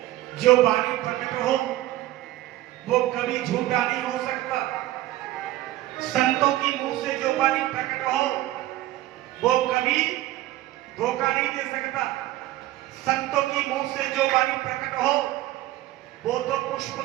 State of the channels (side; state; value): left; quieter; 15.7 dB